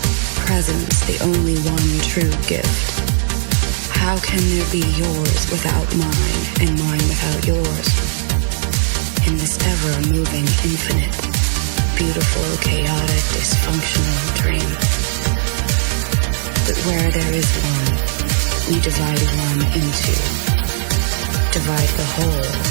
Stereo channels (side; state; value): left; silent; digital silence